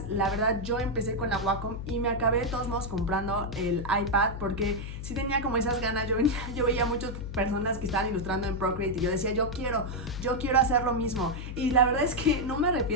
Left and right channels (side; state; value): left; noise; hum, 8 dB below the sound